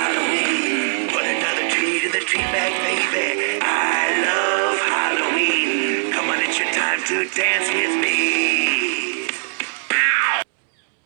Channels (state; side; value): silent; left; 66 dB below the other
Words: Put another tree to the tree bag, baby. I love Halloween. Come on, it's your time to dance with me.